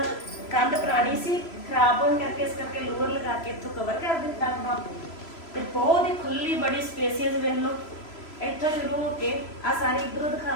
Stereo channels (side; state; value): right; late; 3.0 ms